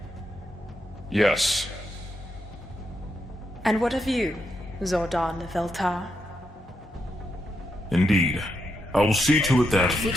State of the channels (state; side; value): normal; both; correlation 0.83